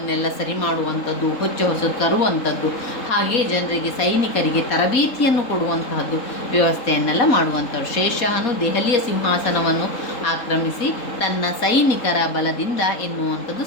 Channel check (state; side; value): late; right; 3.7 ms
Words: ಸರಿ ಮಾಡುವಂಥದ್ದು, ಹೊಸ ತರುವಂಥದ್ದು, ಹಾಗೆ ಜನರಿಗೆ ಸೈನಿಕರಿಗೆ ತರಬೇತಿಯನ್ನು ಕೊಡುವಂತಹದ್ದು ವ್ಯವಸ್ಥೆಯನ್ನೆಲ್ಲ ಮಾಡುವಂಥವ್ರು. ಶೇಷಾಹನು ದೆಹಲಿಯ ಸಿಂಹಾಸನವನ್ನು ಆಕ್ರಮಿಸಿ ತನ್ನ ಸೈನಿಕರ ಬಲದಿಂದ ಎನ್ನುವಂಥದ್ದು